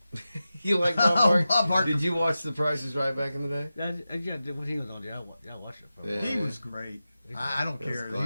You like Bob Oh, Barker? Bob Barker. Did you watch The Price is Right back in the day? Yeah, what he was on there, I watched it for. Yeah. He was great. I don't That's care. He was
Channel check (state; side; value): inverted; both; correlation -0.93